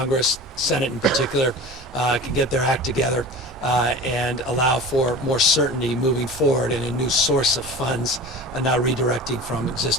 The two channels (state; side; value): normal; both; correlation 0.35